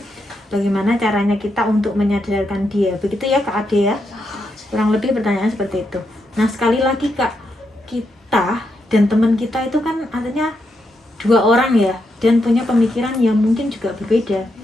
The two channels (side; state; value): both; normal; correlation 0.82